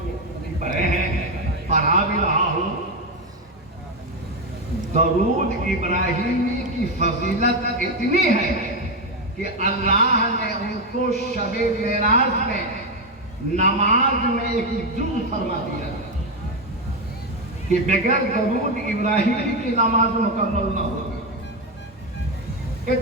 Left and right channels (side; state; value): both; normal; correlation 0.09